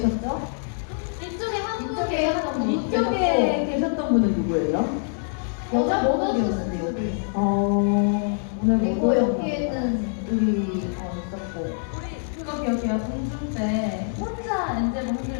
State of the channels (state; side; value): silent; right; digital silence